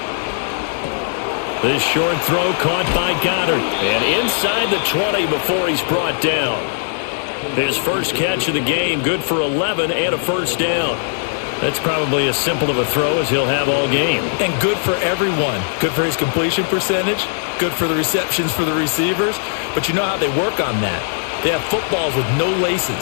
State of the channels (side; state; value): right; silent; digital silence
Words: This short throw caught by Goddard. And inside the 20 before he's brought down. His first catch of the game, good for 11 and a first down. That's probably as simple of a throw as he'll have all game. And good for everyone. Good for his completion percentage. Good for the receptions for the receivers. But you know how they work on that. They have footballs with no